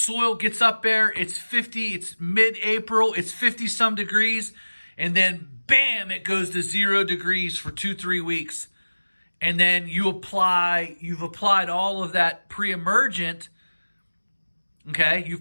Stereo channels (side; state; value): both; inverted; correlation -1.00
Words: gets up there, it's 50, it's mid-April, it's 50 some degrees, and then bam, it goes to 0 degrees for 2-3 weeks. And then you've applied all of that pre-emergent. Okay, you've